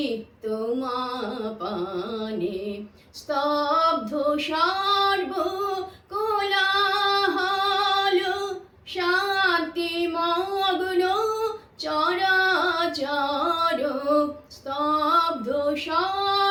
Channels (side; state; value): both; identical; correlation 1.00